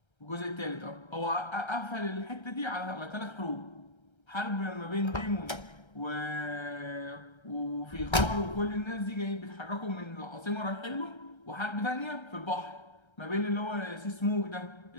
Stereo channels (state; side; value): late; right; 1.3 ms